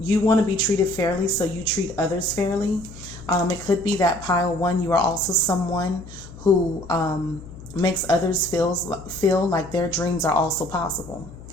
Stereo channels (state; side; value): noise; left; hum, 16 dB below the sound